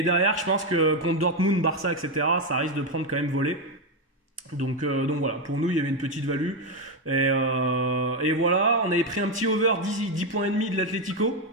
derrière, je pense que contre Dortmund, Barça, etc., ça risque de prendre quand même volée. Donc voilà, pour nous il y avait une petite value. Et voilà, on avait pris un petit over 10 points et demi de l'Atlético.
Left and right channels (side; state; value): both; normal; correlation 0.06